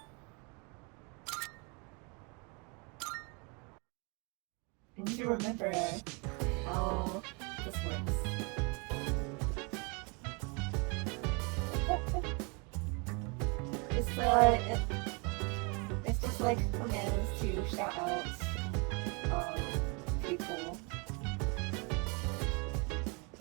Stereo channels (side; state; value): left; quieter; 32.0 dB